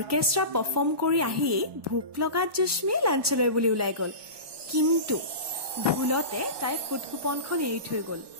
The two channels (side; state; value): left; late; 1.2 ms